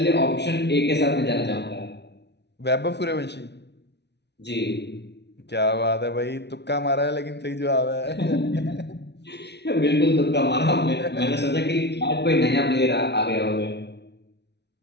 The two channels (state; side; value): late; right; 0.50 ms